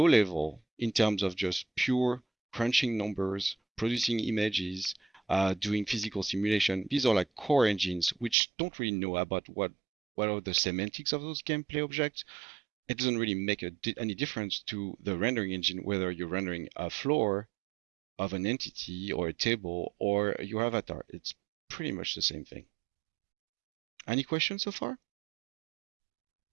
level, in terms of just pure crunching numbers, producing images, doing physical simulation, these are like core engines which don't really know about what are the semantics of those gameplay objects. It doesn't really make any difference to the rendering engine whether you're rendering a floor of an entity or a table or your avatar. It's pretty much the same thing. Any questions so far?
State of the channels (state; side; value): drops out; left; at 8.3 s